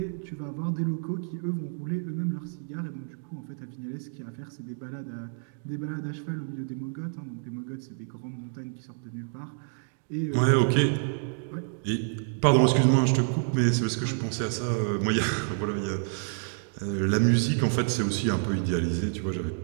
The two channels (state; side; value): silent; left; 59 dB below the other